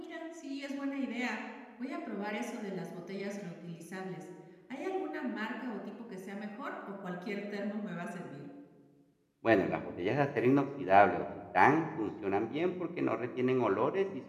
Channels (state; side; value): identical; both; correlation 1.00